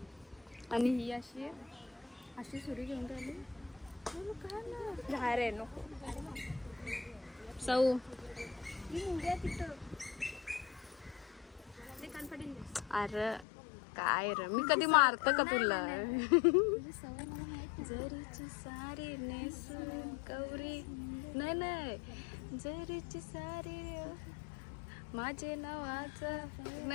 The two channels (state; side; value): drops out; right; at 13.5 s